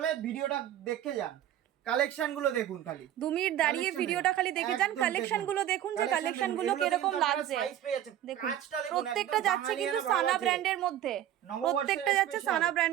ভিডিওটা দেখে যান। কালেকশন গুলো দেখুন, খালি 2 মিনিট দাঁড়িয়ে ভিডিওটা খালি দেখে যান। কালেকশন গুলো দেখুন যে কালেকশন গুলো কিরকম লাগছে। দেখুন প্রত্যেকটা যাচ্ছে কিন্তু সানা ব্র্যান্ডের মধ্যে, প্রত্যেকটা যাচ্ছে সানা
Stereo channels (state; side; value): quieter; left; 11.6 dB